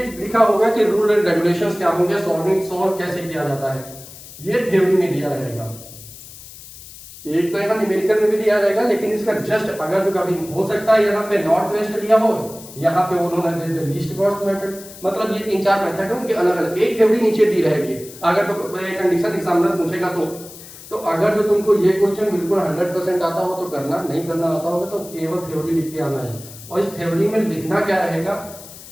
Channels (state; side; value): noise; left; hiss, 17 dB below the sound